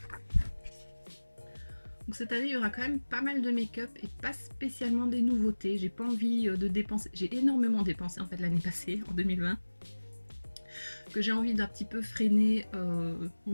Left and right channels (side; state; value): both; inverted; correlation -1.00